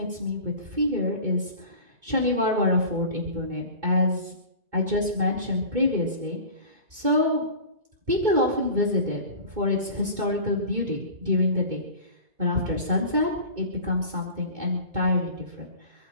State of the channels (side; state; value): left; late; 2.2 ms